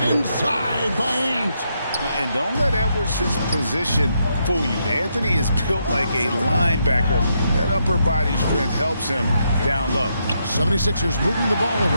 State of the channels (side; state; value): both; inverted; correlation -0.79